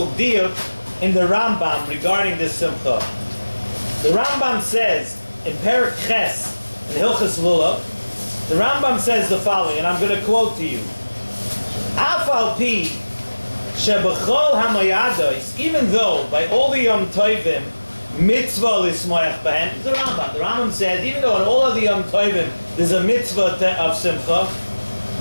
deal in the Rambam regarding this Simcha. The Rambam says in Perek Ches, in Hilchos Lulav, the Rambam says the following, and I'm going to quote to you. Af al pi shebechol hamayados, even though by all the Yom Tovim mitzvah lismoyach b'hem, the Rambam says, even though in all of the Yom Tovim there's a mitzvah of Simcha,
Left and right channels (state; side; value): inverted; both; correlation -1.00